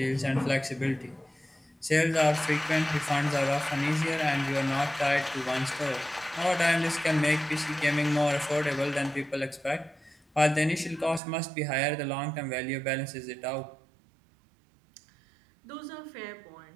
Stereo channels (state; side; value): drops out; left; at 11.2 s